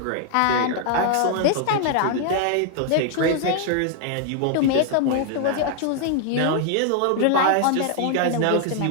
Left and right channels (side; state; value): both; different; correlation 0.00